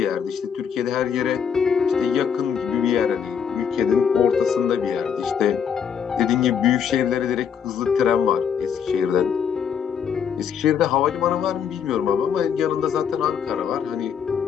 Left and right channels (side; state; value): right; quieter; 7.5 dB